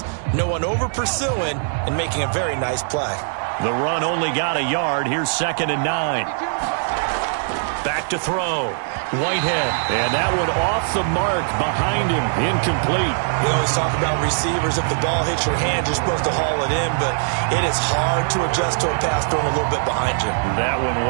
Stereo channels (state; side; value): silent; left; 56 dB below the other